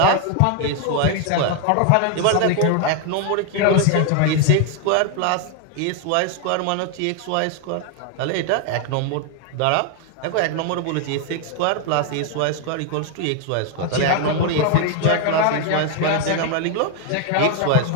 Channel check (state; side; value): different; both; correlation 0.01